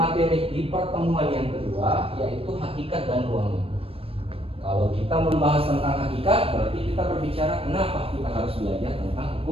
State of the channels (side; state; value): left; late; 0.28 ms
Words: di pertemuan yang kedua yaitu hakikat dan ruang lingkup. Kalau kita membahas tentang hakikat berarti kita berbicara kenapa kita harus belajar tentang